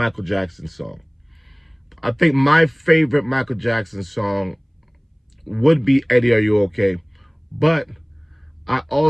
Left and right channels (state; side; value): identical; both; correlation 1.00